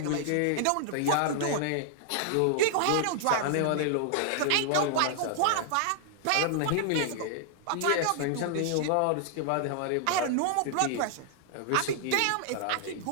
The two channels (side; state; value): both; different; correlation 0.00